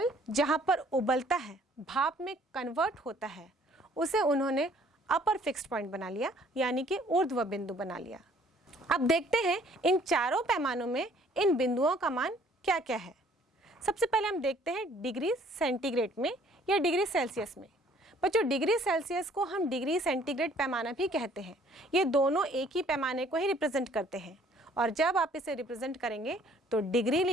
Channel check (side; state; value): both; normal; correlation 0.59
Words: जहाँ पर उबलता है, भाप में कन्वर्ट होता है, उसे उन्होंने अपर फिक्स्ड पॉइंट बना लिया यानी कि ऊर्ध्व बिंदु बना लिया। अब देखते हैं इन चारों पैमानों में इन बिंदुओं का मान क्या क्या है। सबसे पहले हम देखते हैं डिग्री सेंटीग्रेड में या डिग्री सेल्सियस में। बच्चों डिग्री सेल्सियस को हम डिग्री सेंटीग्रेड पैमाना भी कहते हैं। ये दोनों एक ही पैमाने को ही रिप्रेजेंट करते हैं, और जब आप इसे रिप्रेजेंट करेंगे तो डिग्री